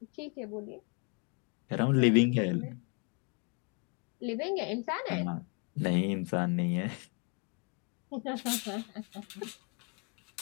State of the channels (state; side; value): quieter; right; 34.8 dB